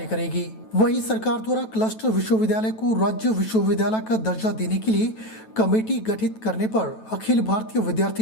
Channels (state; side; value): late; right; 9.1 ms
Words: करेगी। वहीं सरकार द्वारा क्लस्टर विश्वविद्यालय को राज्य विश्वविद्यालय का दर्जा देने के लिए कमेटी गठित करने पर अखिल भारतीय